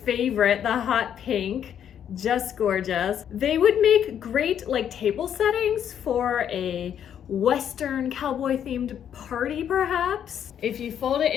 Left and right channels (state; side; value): quieter; right; 9.3 dB